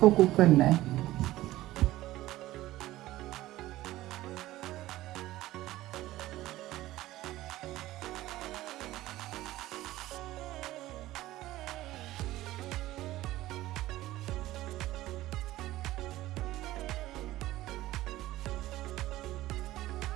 कुक करना है।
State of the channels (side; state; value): left; quieter; 16.2 dB